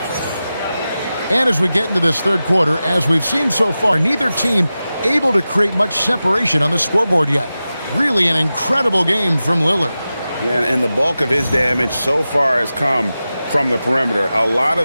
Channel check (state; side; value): inverted; both; correlation -0.94